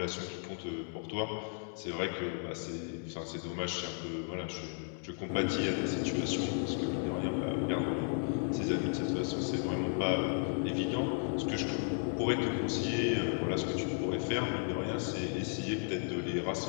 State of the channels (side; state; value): right; silent; 55 dB below the other